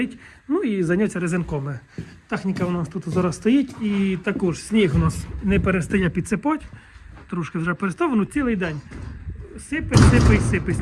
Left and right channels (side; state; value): both; identical; correlation 1.00